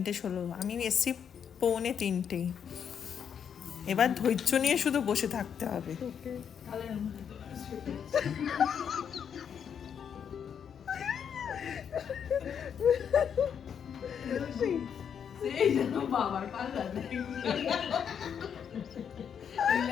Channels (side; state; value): right; quieter; 7.8 dB